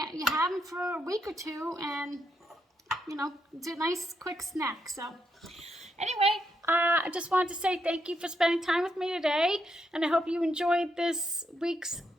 have them for a week or two, and it's a nice quick snack. So anyway, I just wanted to say thank you for spending time with me today, and I hope you enjoyed this week's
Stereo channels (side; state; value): both; normal; correlation 0.80